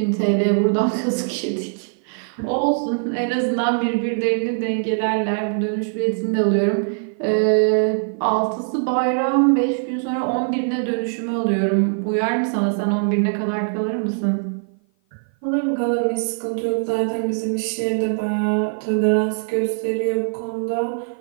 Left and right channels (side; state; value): left; silent; 55 dB below the other